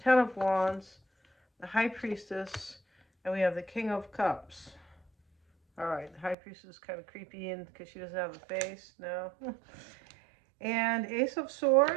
Ten of Wands, the High Priestess, and we have the King of Cups. All right, the High Priestess is kind of creepy in because she doesn't have a face. No. And Ace of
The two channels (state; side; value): drops out; left; at 6.4 s